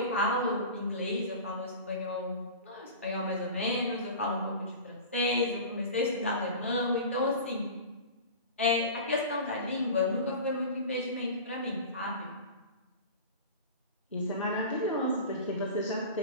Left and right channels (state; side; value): inverted; both; correlation -0.34